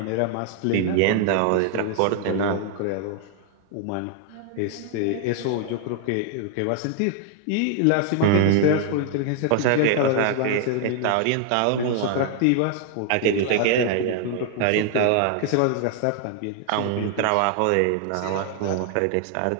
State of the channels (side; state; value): both; different; correlation 0.00